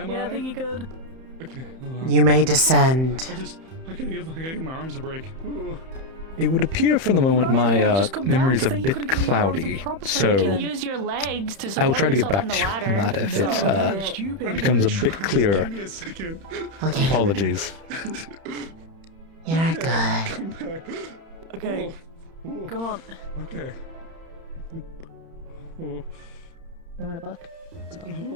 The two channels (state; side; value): late; left; 31 ms